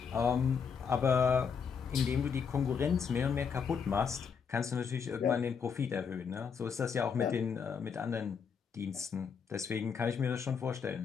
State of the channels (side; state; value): right; quieter; 6.4 dB